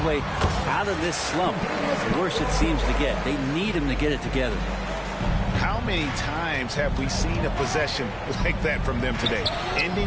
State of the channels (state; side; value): identical; both; correlation 1.00